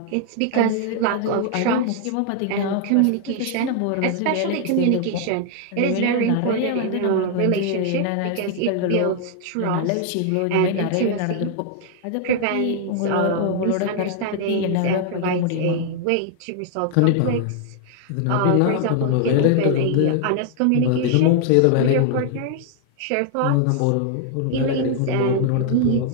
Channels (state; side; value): different; both; correlation 0.00